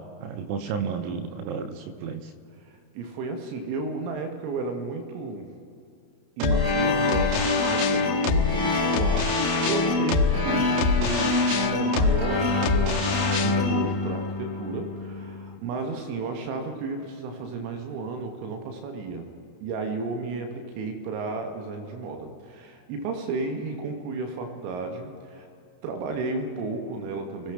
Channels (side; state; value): left; late; 29 ms